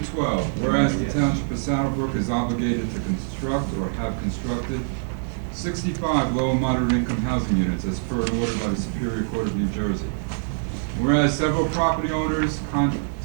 whereas the Township of Saddlebrook is obligated to construct or have constructed 65 low and moderate income housing units as per an order by the Superior Court of New Jersey. Whereas several property owners,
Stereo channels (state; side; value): silent; left; digital silence